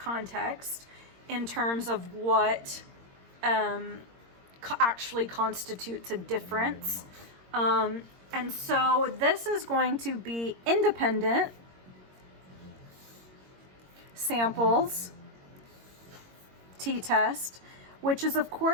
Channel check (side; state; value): left; late; 22 ms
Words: in terms of what actually constitutes a difference. And so this is going to be independent samples t-test, which is of